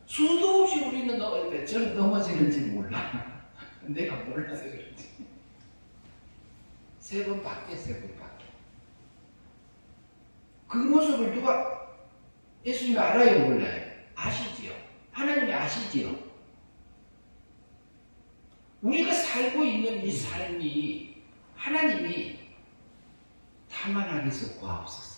수도 없이 우리는 저는 넘어지는지 몰라. 내가 몰라서 그렇지. 3번밖에. 그 모습을 누가 예수님이 알아요, 몰라요? 아시지요. 하나님이 아시지요. 우리가 살고 있는 이 삶이 하나님이 다만 하게서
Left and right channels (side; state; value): both; inverted; correlation -1.00